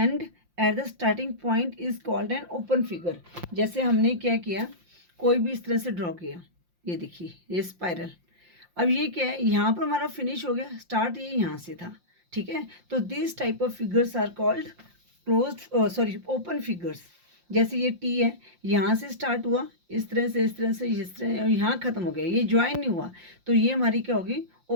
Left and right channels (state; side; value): late; left; 5.7 ms